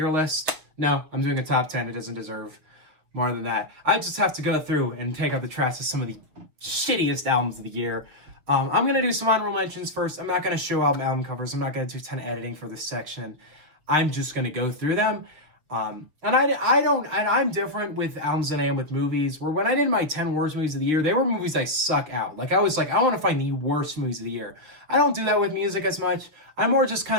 list. No, I'm doing a top 10. It doesn't deserve more than that. I just have to go through and take out the trash of some of the shittiest albums of the year. I'm going to do some honorable mentions first. I'm not going to show album covers. I'm not going to do a ton of editing for this section. I'm just going to go through them. I'm different with albums than I am with movies, where when I did my 10 worst movies of the year, they were movies I suck out. Like, I was like, I want to find the worst movies of the year. I don't do that with music as much. I more just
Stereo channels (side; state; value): left; late; 6.7 ms